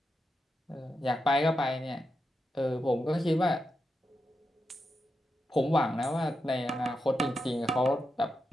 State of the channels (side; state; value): both; normal; correlation 0.87